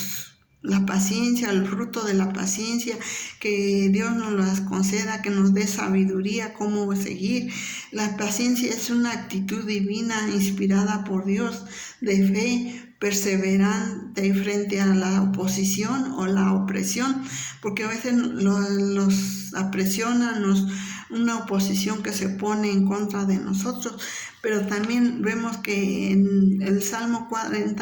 la paciencia, el fruto de la paciencia, que Dios nos las conceda, que nos dé sabiduría cómo seguir. La paciencia es una actitud divina inspirada por Dios, de fe perseverante frente a la oposición o la opresión, porque a veces los apresionan, una oposición que se pone en contra de nosotros. Pero también vemos que en el Salmo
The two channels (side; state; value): both; identical; correlation 1.00